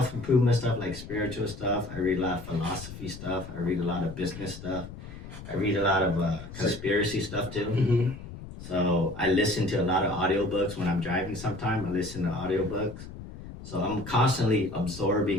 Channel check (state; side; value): noise; left; rumble, 13 dB below the sound